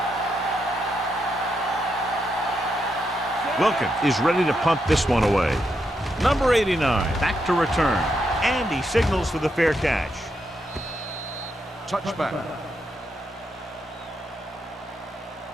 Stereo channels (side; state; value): both; normal; correlation 0.82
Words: Wilkins is ready to punt this one away. Number 89, back to return. And he signals for the fair catch. Touchback.